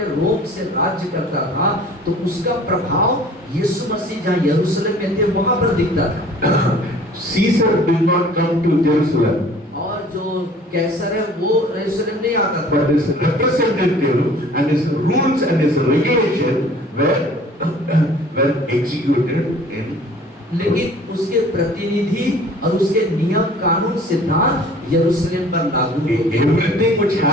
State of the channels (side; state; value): both; normal; correlation 0.49